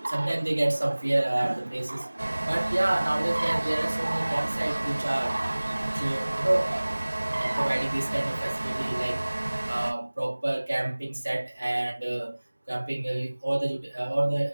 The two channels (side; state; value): both; inverted; correlation -1.00